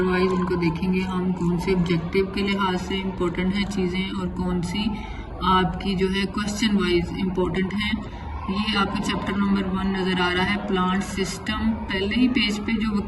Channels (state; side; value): identical; both; correlation 1.00